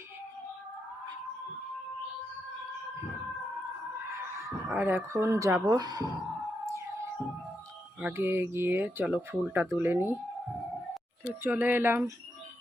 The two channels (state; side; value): normal; both; correlation 0.83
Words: আর এখন যাব, আগে গিয়ে চলো ফুলটা তুলে নিই। তো চলে এলাম